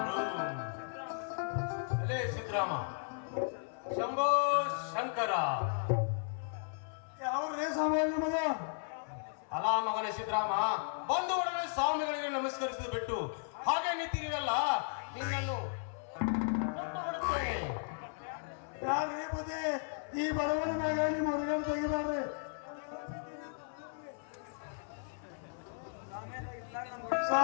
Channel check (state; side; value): silent; right; 54 dB below the other